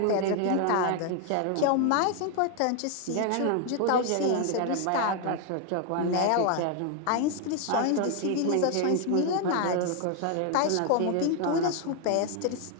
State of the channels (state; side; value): different; both; correlation 0.01